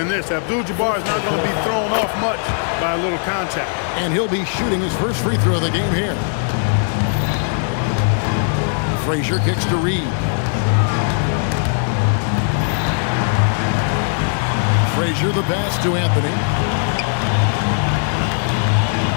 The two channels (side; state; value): right; silent; 67 dB below the other